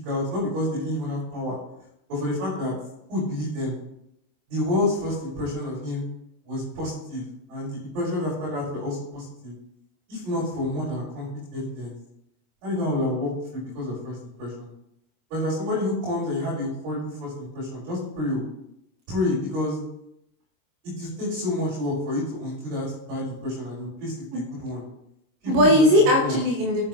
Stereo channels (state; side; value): late; left; 26 ms